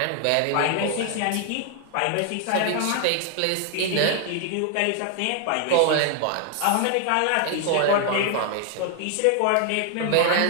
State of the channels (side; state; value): both; different; correlation 0.00